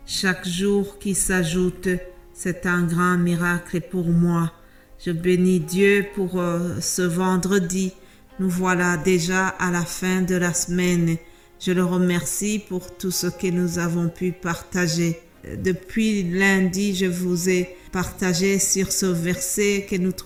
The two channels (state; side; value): identical; both; correlation 1.00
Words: Chaque jour qui s'ajoute, c'est un grand miracle pour moi. Je bénis Dieu pour ce vendredi. Nous voilà déjà à la fin de la semaine. Je le remercie pour tout ce que nous avons pu partager. Depuis lundi, je vous ai partagé sur ce verset que nous